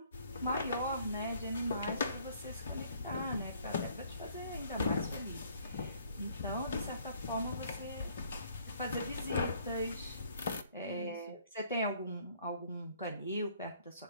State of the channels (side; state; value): both; inverted; correlation -0.61